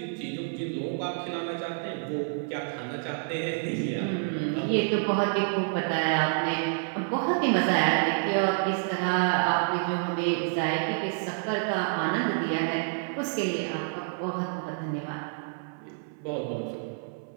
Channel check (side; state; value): left; silent; 59 dB below the other